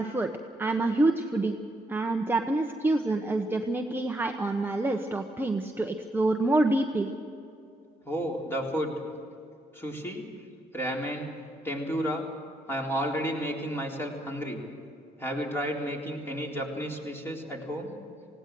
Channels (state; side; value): normal; both; correlation 0.77